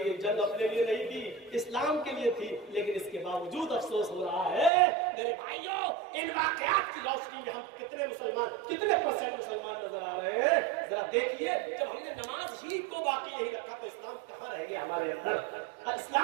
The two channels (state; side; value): drops out; left; at 4.7 s